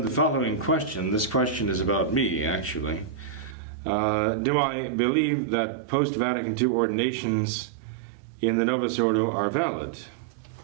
the following question. This question is about me, actually. Do I believe that Post-Vatican II ordinations in the Novus Ordo are valid?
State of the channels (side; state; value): left; drops out; at 3.6 s